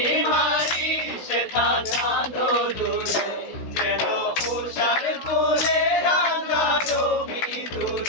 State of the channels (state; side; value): late; right; 16 ms